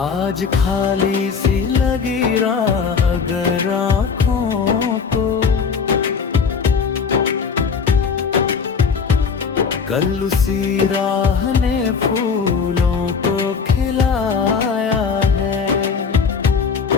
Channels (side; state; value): right; quieter; 5.8 dB